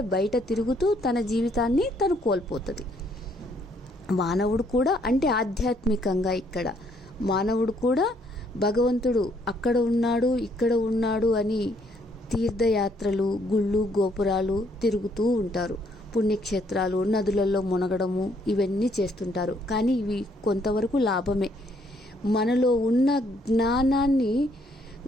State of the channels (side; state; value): both; normal; correlation 0.68